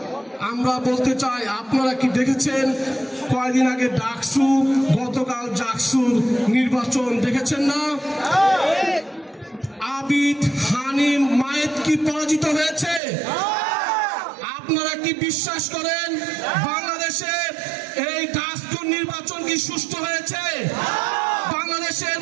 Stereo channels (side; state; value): left; drops out; at 13.0 s